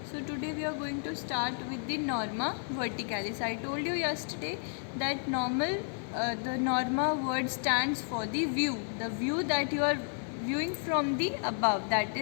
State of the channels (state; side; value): silent; right; 56 dB below the other